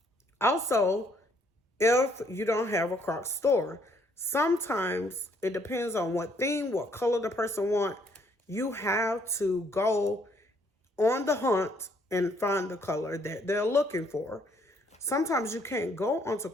Also, if you don't have a Croc store, sometimes it depends on what theme, what color the person want. You have to go on the hunt and find the color that they're looking for. Sometimes you can't go onto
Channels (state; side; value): normal; both; correlation 0.67